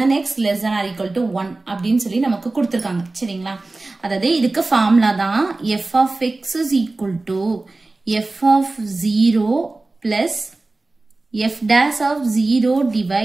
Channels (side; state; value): left; quieter; 3.2 dB